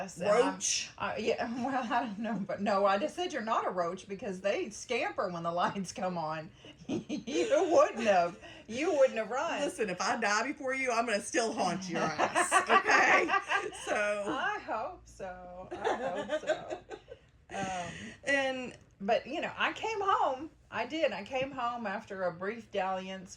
and Roach? yeah, well, I don't know, but no, I just said you're not a roach because they scamper when the lights come on. You wouldn't have. You wouldn't have run. Listen, if I die before you, I'm going to still haunt your ass. Okay? So. I hope so. I hope so. And But, I came home. I did. I came home after a brief dalliance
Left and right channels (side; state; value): both; identical; correlation 1.00